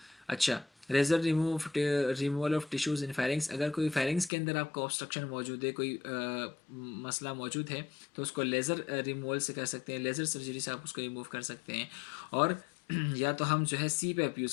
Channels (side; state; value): right; drops out; at 4.3 s